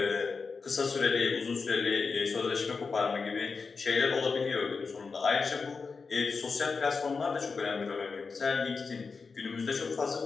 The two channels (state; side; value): quieter; right; 4.8 dB